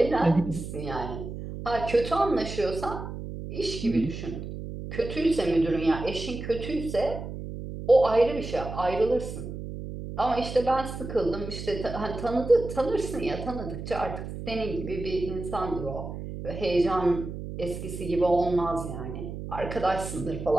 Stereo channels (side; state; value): right; noise; hum, 8 dB below the sound